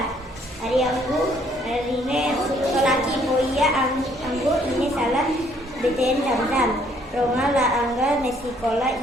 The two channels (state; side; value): normal; both; correlation 0.64